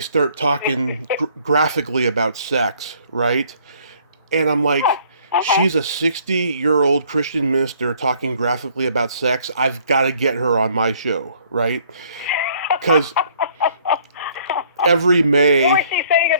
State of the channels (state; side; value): inverted; both; correlation -0.60